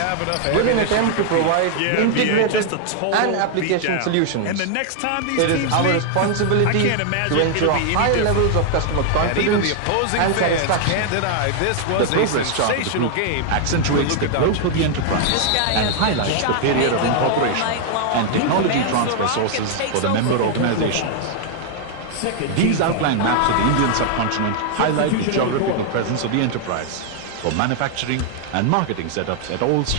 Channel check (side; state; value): both; different; correlation 0.00